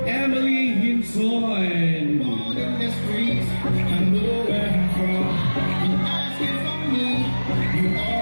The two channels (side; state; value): both; inverted; correlation -1.00